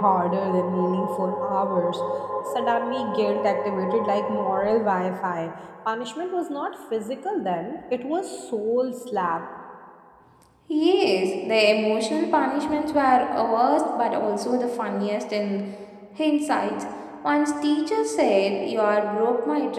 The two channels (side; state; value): both; identical; correlation 1.00